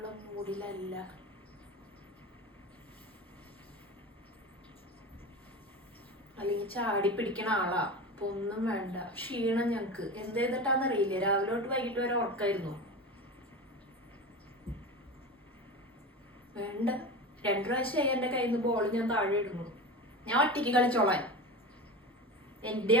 മൂഡിലല്ല. അല്ലെങ്കിൽ ചാടി പിടിക്കണ ആളാ. അപ്പൊ ഒന്നും വേണ്ട. ക്ഷീണം ഞങ്ങക്ക് എന്ത് ചെയ്തിട്ടാന്നറിയില്ല. രാവിലെ തൊട്ട് വൈകിട്ട് വരെ ഉറക്കായിരുന്നു. വേണ്ട. 2 പ്രാവശ്യമായി എന്റെ കയ്യിൽ നിന്ന് ബോൾ ഞാൻ താഴെ ഇടുന്നു. ഞാൻ ഒറ്റയ്ക്ക് കളിച്ചോളാൻ. എന്റെ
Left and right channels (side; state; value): both; normal; correlation 0.28